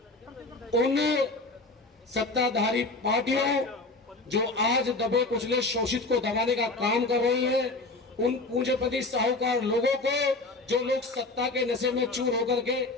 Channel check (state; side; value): quieter; right; 3.2 dB